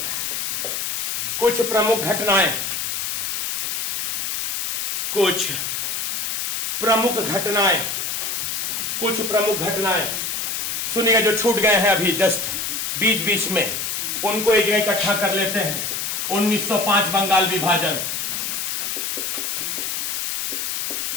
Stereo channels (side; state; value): left; noise; hiss, 1 dB below the sound